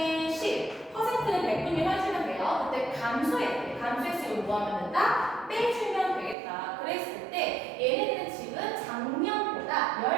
10, 퍼센트는 100분의 1 해주면 돼요. 그때 감소했으면 뭐 하면 된다? 빼주면 되겠다. 그랬을 때 얘네들은 지금 작년보다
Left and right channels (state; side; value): drops out; left; at 6.4 s